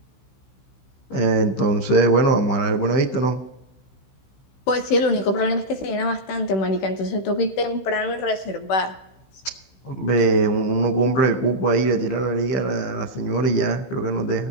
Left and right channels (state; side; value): late; right; 15 ms